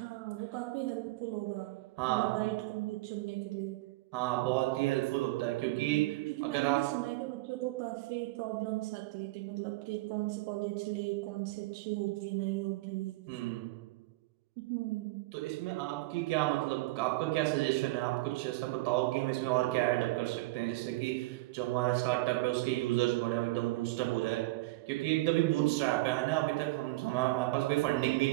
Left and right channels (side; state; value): left; quieter; 20.1 dB